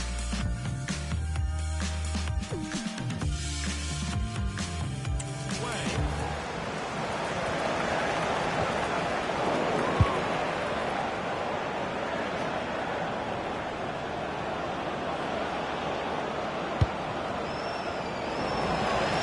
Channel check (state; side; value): identical; both; correlation 1.00